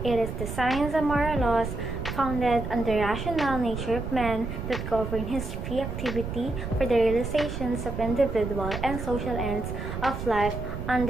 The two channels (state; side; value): noise; right; rumble, 6 dB below the sound